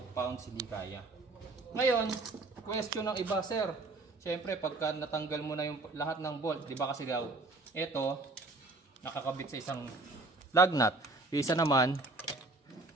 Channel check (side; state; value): left; quieter; 3.1 dB